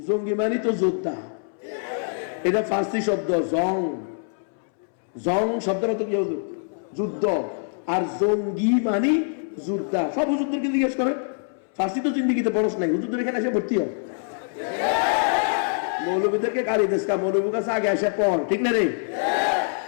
জঙ্গি মানে তো যোদ্ধা, এটা ফার্সি শব্দ, জং শব্দের অর্থ কি? যুদ্ধ। আর জঙ্গি মানে যোদ্ধা। সব হুজুরদেরকে জিজ্ঞেস করে, ফার্সি তো জিন্দিগিতে পড়স নাই, হুজুরদের এখানে এসে ভর্তি হয়। মৌলবীদেরকে গাড়ি দেশকা, মৌলবীর কাছে আগে এসে পড়, ঠিক না রে?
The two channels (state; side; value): silent; right; 62 dB below the other